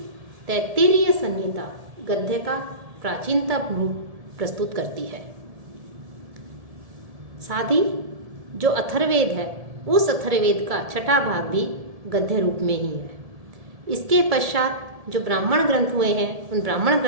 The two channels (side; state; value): left; late; 1.7 ms